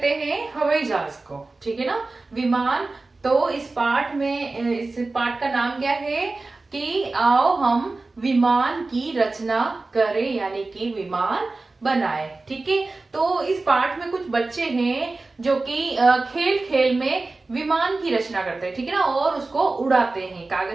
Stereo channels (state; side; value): quieter; left; 3.4 dB